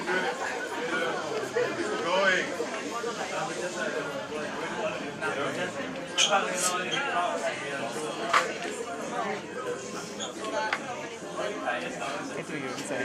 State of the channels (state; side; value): identical; both; correlation 1.00